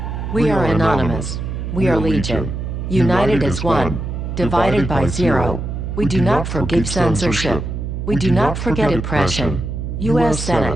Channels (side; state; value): right; noise; hum, 5 dB below the sound